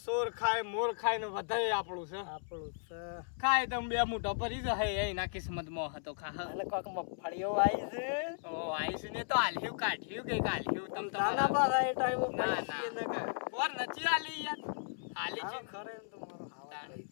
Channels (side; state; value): right; silent; 54 dB below the other